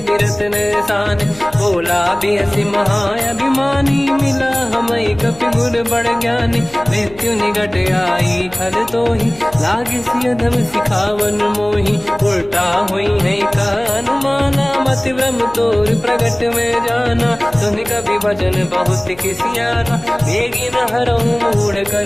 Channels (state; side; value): noise; left; hum, 22 dB below the sound